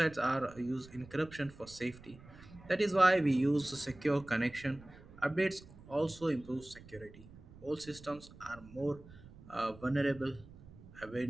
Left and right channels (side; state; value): right; noise; rumble, 20 dB below the sound